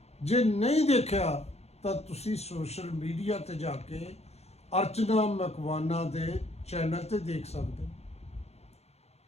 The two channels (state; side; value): late; right; 0.31 ms